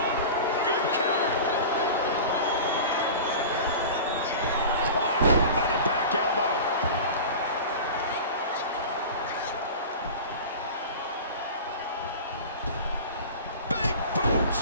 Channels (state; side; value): inverted; both; correlation -0.34